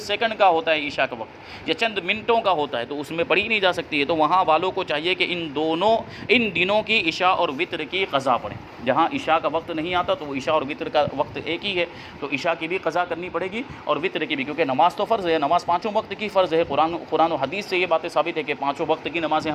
سیکنڈ کا ہوتا ہے عشاء کا وقت یا چند منٹوں کا ہوتا ہے، تو اس میں پڑھی نہیں جا سکتی ہے۔ تو وہاں والوں کو چاہیے کہ ان دنوں کی عشاء اور وطر کی قضا پڑھیں۔ جہاں عشاء کا وقت نہیں آتا تو وہ عشاء اور وطر کا وقت ایک ہی ہے، تو عشاء کی بھی قضا کرنی پڑے گی اور وطر کی بھی، کیونکہ نماز تو فرض ہے، نماز 5 وقت کی فرض ہے، قرآن و حدیث سے یہ باتیں ثابت ہے کہ 5 وقت کی نمازیں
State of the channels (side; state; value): both; identical; correlation 1.00